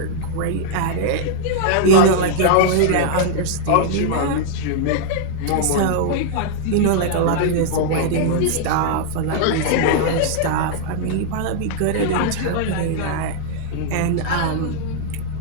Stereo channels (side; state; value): both; different; correlation -0.01